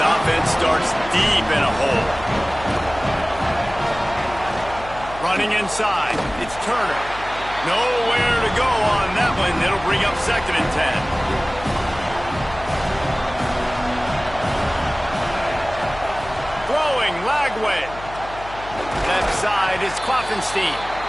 starts deep in a hole. Running inside. It's Turner. Nowhere to go on that one. It'll bring up 2nd and 10. Lagway. Left side is Klopfenstein.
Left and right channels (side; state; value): left; noise; hum, 15 dB below the sound